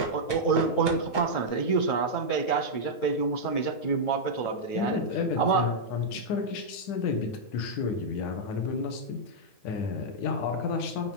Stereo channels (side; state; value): right; late; 9.4 ms